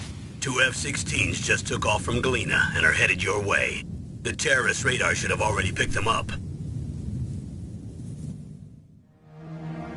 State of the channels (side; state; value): both; identical; correlation 1.00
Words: 2 F-16s just took off from Galena and are headed your way. The terrorist radar should have already picked them up.